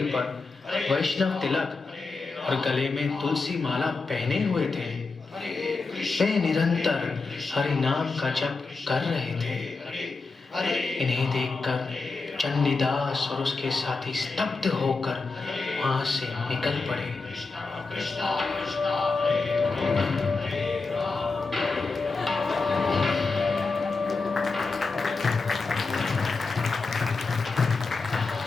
पर वैष्णव तिलक और गले में तुलसी माला पहने हुए थे। वे निरंतर हरि नाम का जप कर रहे थे। इन्हें देखकर चंडीदास और उसके साथी स्तब्ध होकर वहां से निकल पड़े।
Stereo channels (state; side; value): quieter; right; 4.0 dB